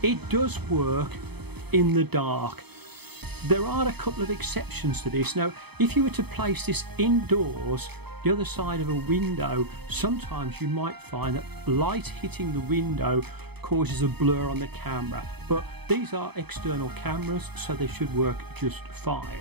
It does work in the dark. There are a couple of exceptions to this. Now, if you were to place this indoors, the other side of a window, sometimes you might find that light hitting the window causes a blur on the camera, but these are external cameras, so they should work just fine.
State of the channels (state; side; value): late; left; 0.98 ms